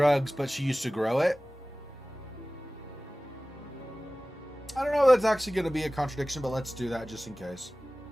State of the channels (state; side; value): normal; both; correlation 0.98